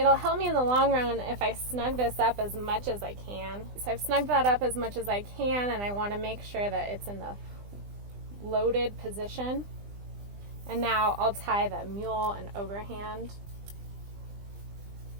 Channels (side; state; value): left; late; 20 ms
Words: help me in the long run if I snug this up as much as I can. So I've snugged that up as much as I can, and I want to make sure that it's in the loaded position. And now I'll tie the mule and overhand.